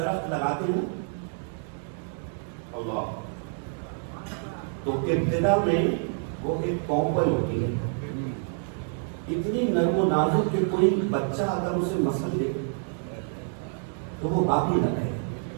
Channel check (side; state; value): left; silent; 56 dB below the other